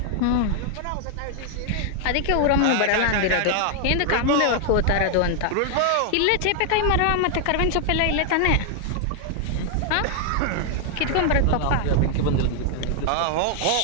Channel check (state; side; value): different; both; correlation 0.00